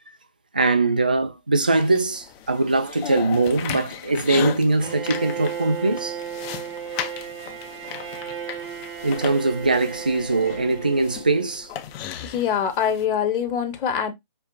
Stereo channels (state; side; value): inverted; both; correlation -0.63